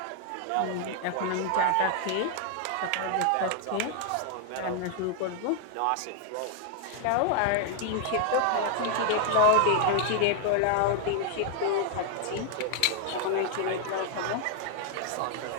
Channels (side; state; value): both; different; correlation 0.00